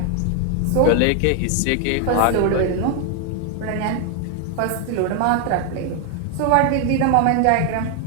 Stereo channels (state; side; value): different; both; correlation 0.00